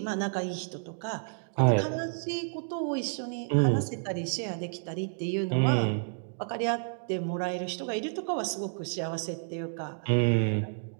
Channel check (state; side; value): silent; left; digital silence